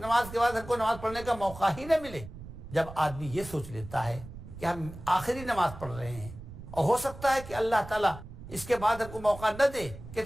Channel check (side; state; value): right; noise; rumble, 14 dB below the sound